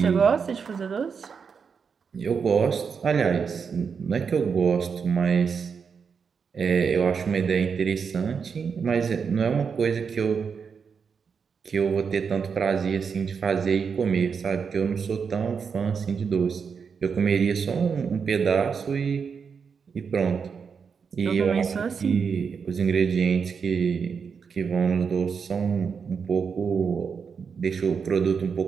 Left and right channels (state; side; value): quieter; left; 6.1 dB